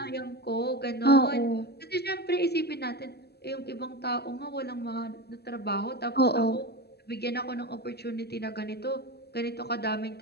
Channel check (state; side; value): late; right; 0.47 ms